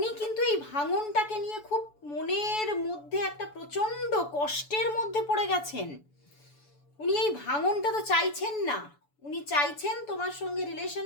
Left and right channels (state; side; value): late; right; 6.9 ms